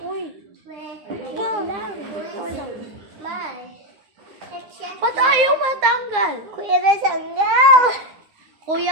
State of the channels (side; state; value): left; late; 9.6 ms